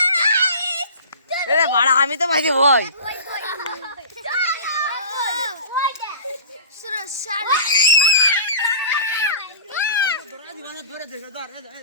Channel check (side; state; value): both; inverted; correlation -0.39